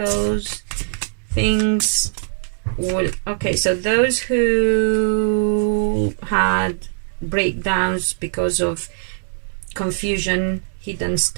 Things will... Okay, so those who had breakdowns because of confusion, hidden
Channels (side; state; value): left; silent; digital silence